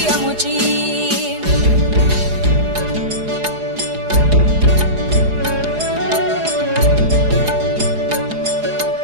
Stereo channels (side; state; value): left; late; 4.8 ms